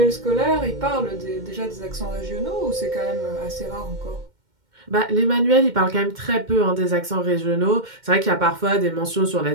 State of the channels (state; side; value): late; left; 2.1 ms